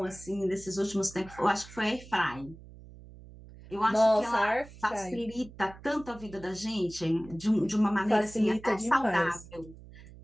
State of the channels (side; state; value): right; noise; hum, 18 dB below the sound